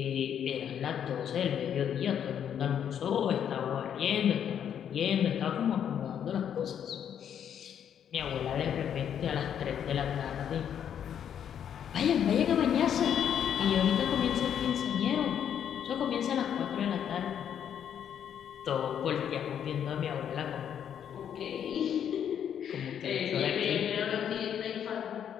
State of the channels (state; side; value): quieter; right; 9.0 dB